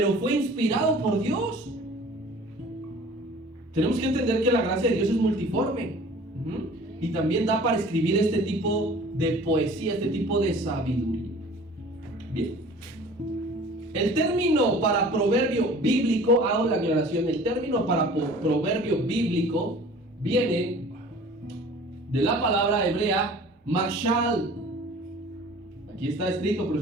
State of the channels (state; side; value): normal; both; correlation 0.46